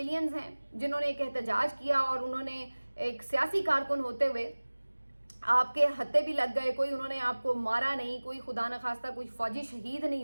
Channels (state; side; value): inverted; both; correlation -1.00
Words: ہیں, جنہوں نے ایک احتجاج کیا اور انہوں نے ایک سیاسی کارکن ہوتے ہوئے آپ کے ہتھے بھی لگ گئے, کوئی انہوں نے آپ کو مارا نہیں, کوئی خدا نخواستہ کوئی فوجی شہید نہیں